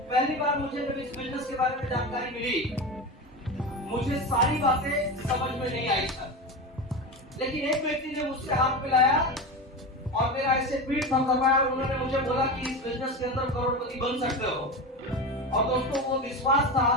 पहली बार मुझे जब इस बिजनेस के बारे में जानकारी मिली, मुझे सारी बातें समझ में नहीं आई सर, लेकिन एक व्यक्ति ने मुझसे हाथ मिलाया और मेरा ऐसे पीठ थपथपाया और उन्होंने मुझे बोला कि इस बिजनेस के अंदर करोड़पति बन सकते हो। और दोस्तों, वो विश्वास था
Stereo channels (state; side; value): normal; both; correlation 0.23